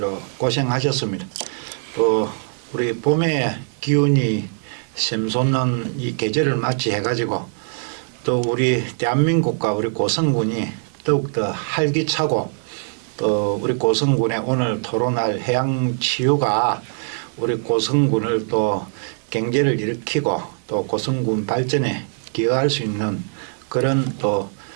고생하셨습니다. 또 우리 봄의 기운이 샘솟는 이 계절을 맞이해가지고 또 우리 대한민국과 우리 고성군이 더욱더 활기차고 또 우리 고성군의 오늘 토론할 해양치유가 우리 고성군을 또 경제를 일으키고 또 고성군 발전에 기여할 수 있는 그런 또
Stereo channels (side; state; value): left; silent; digital silence